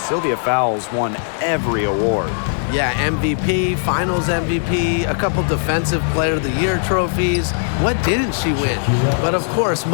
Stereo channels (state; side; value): silent; right; digital silence